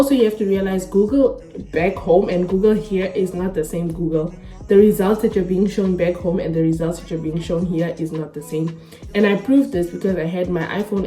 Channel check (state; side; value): identical; both; correlation 1.00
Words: you have to realize Google back home and Google here is not the same Google. The results that you're being shown back home and the results that you're being shown here is not the same. And I proved this because I had my iPhone